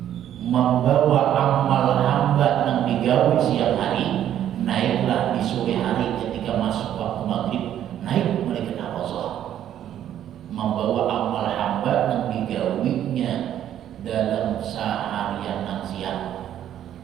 Membawa amal hamba yang digawe siang hari, naiklah di sore hari ketika masuk waktu maghrib, naik malaikat hafazah. Membawa amal hamba yang digawinya dalam seharian yang siang,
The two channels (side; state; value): left; quieter; 10.9 dB